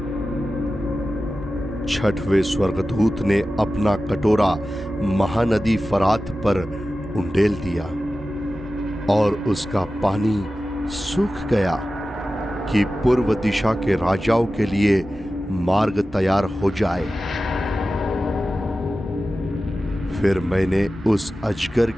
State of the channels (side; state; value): both; normal; correlation 0.94